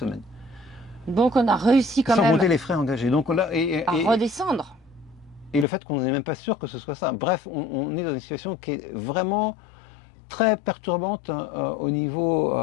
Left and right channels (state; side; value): drops out; right; at 5.7 s